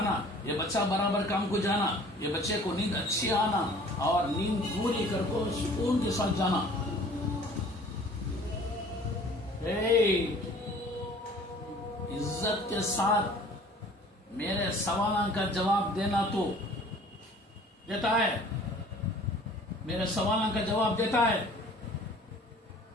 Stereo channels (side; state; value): both; normal; correlation 0.50